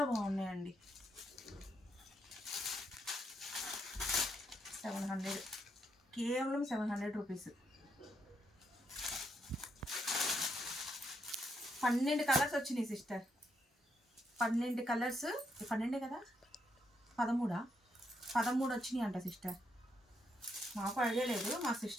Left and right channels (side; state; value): both; normal; correlation 0.78